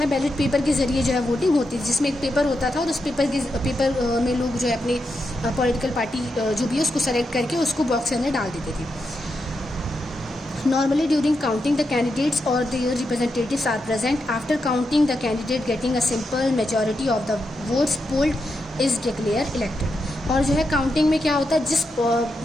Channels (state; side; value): normal; both; correlation 0.85